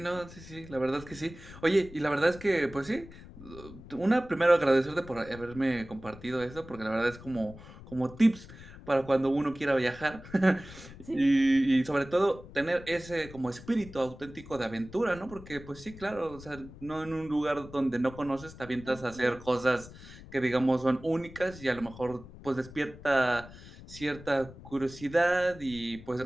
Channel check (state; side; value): noise; left; rumble, 17 dB below the sound